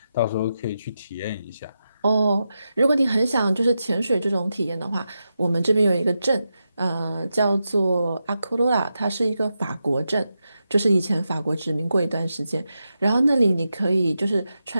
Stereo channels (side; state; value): both; inverted; correlation -0.88